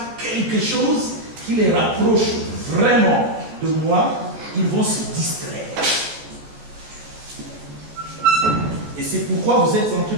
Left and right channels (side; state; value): left; late; 14 ms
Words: quelque chose qui les rapproche vraiment de moi, ils vont se distraire. Et c'est pourquoi vous êtes en train